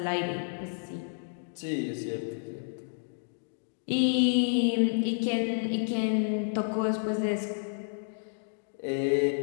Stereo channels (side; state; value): right; silent; digital silence